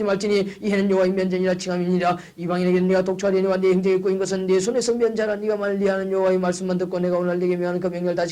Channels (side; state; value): both; identical; correlation 1.00